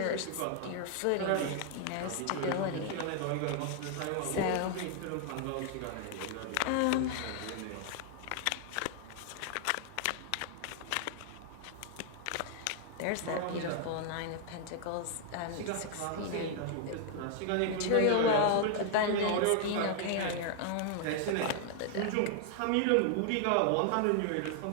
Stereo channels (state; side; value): different; both; correlation 0.00